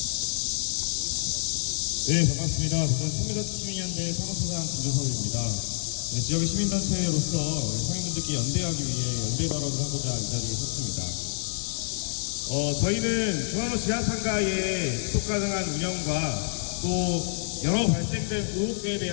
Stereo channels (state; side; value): silent; right; 60 dB below the other